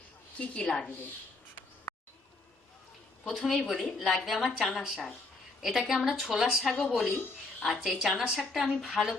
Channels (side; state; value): right; quieter; 3.2 dB